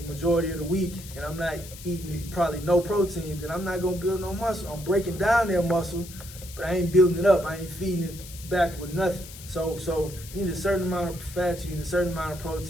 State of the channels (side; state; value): left; noise; hiss, 15 dB below the sound